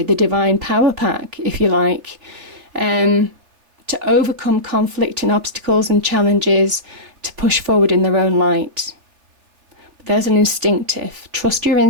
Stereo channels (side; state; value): left; late; 3.3 ms